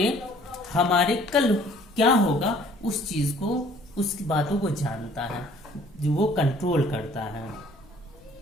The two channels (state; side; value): noise; left; rumble, 27 dB below the sound